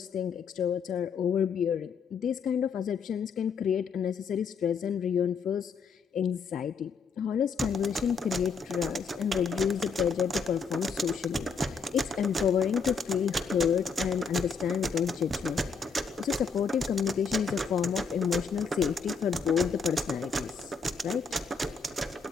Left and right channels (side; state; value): right; quieter; 5.5 dB